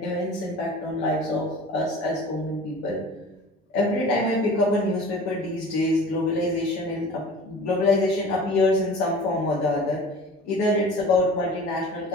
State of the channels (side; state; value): both; normal; correlation 0.41